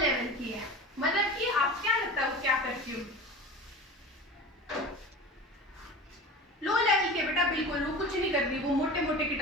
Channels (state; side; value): normal; both; correlation 0.34